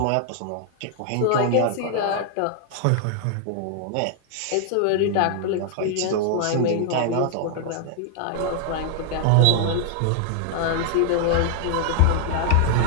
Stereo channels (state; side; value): different; both; correlation 0.00